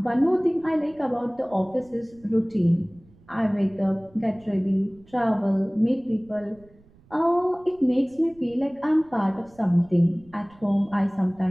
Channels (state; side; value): noise; right; rumble, 28 dB below the sound